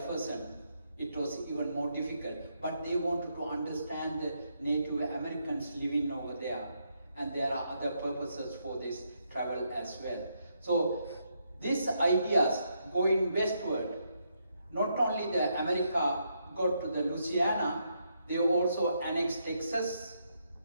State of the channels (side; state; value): both; inverted; correlation -0.78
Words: it was even more difficult. But they wanted to understand the Native Americans living over there, and there are other purposes for this travel as well. So these ideas going westward, not only the America got to the Louisiana, they also annexed Texas